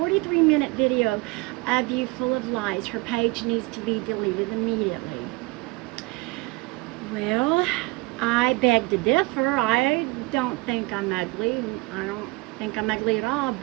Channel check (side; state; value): left; quieter; 24.4 dB